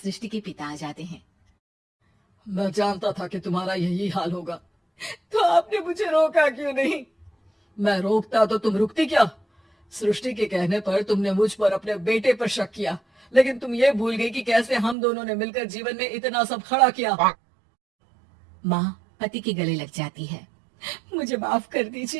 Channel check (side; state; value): left; drops out; at 15.0 s